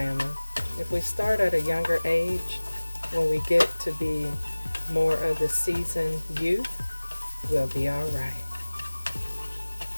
If we start at a younger age, when we get to be more of the seasoned youth, we'll be all right.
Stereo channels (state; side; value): inverted; both; correlation -1.00